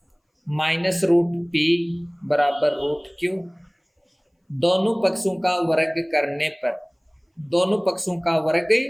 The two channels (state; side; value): identical; both; correlation 1.00